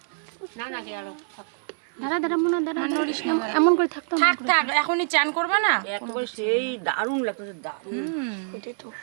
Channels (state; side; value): silent; left; 61 dB below the other